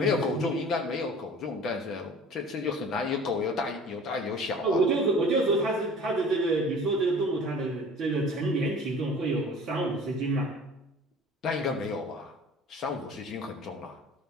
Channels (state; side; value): normal; both; correlation 0.44